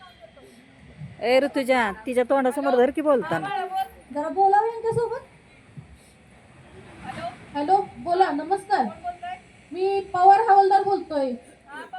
देतो। ए ऋतुजा, तिच्या तोंडासमोर धर की बोलताना। जरा बोलावं यांच्यासोबत। हॅलो, बोला। नमस्कार, मी पवार हवालदार बोलतोय।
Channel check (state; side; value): identical; both; correlation 1.00